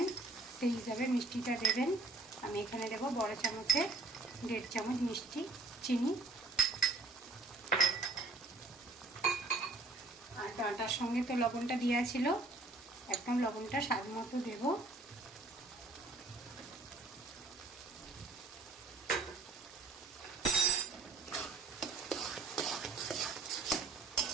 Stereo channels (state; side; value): quieter; left; 3.2 dB